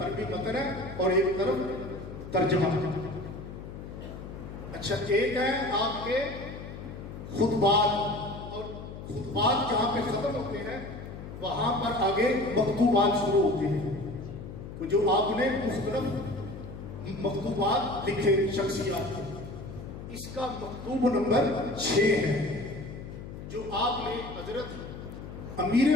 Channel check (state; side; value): noise; left; hum, 11 dB below the sound